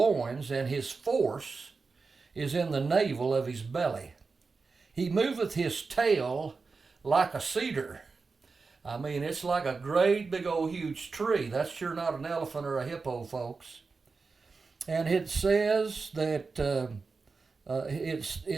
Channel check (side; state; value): left; quieter; 4.4 dB